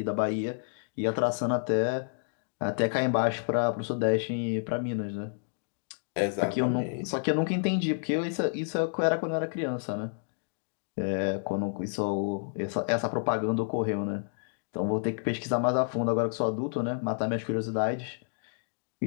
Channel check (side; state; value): right; silent; digital silence